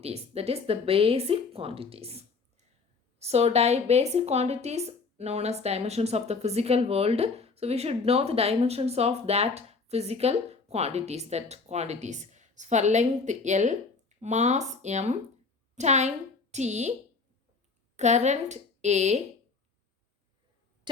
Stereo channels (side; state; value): right; quieter; 4.5 dB